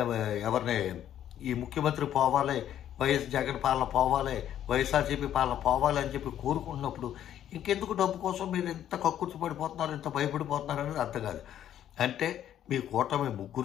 ఎవరిని ఈ ముఖ్యమంత్రి పోవాలి, వైఎస్ జగన్ పాలన పోవాలి, వైఎస్ఆర్సీపీ పాలన పోవాలి అని చెప్పి కోరుకుంటున్నప్పుడు ఇంకెందుకు డబ్బు కోసం మీరు ఇంత కక్కుర్తి పడిపోతున్నారు, ఇంత భయపడిపోతున్నారు అనేది అర్థం కాదు. అంటే మీ కూటమి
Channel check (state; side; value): quieter; right; 10.9 dB